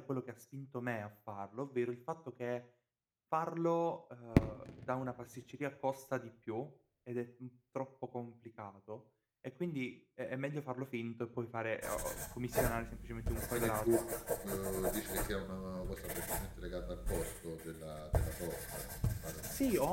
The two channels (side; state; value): both; identical; correlation 1.00